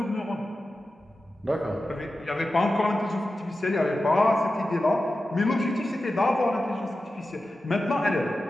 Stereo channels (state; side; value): normal; both; correlation 0.93